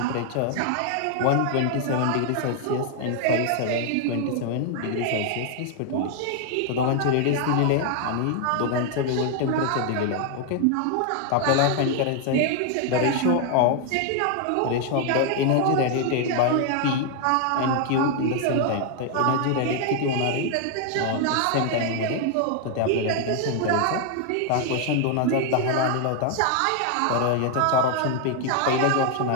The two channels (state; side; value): different; both; correlation 0.00